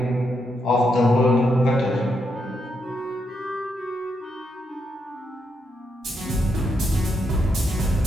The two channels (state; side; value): normal; both; correlation 0.80